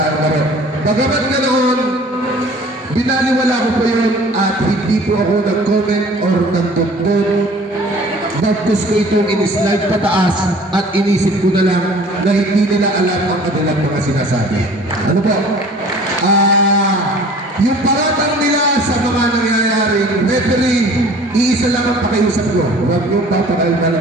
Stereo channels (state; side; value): normal; both; correlation 0.49